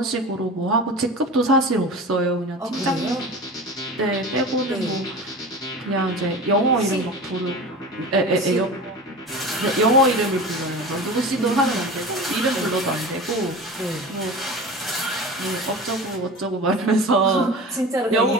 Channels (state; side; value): normal; both; correlation 0.33